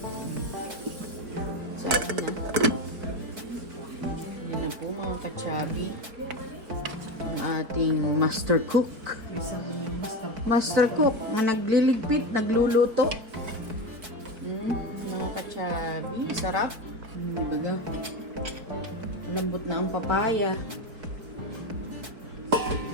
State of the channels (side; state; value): left; late; 4.6 ms